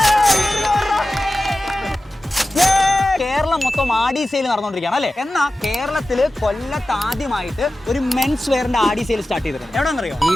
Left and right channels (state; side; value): normal; both; correlation 0.95